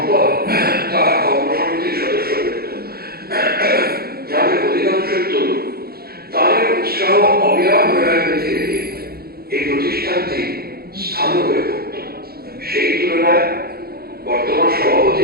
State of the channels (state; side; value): late; left; 0.45 ms